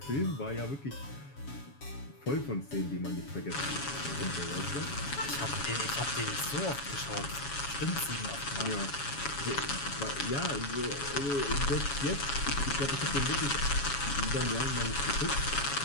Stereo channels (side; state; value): right; late; 7.2 ms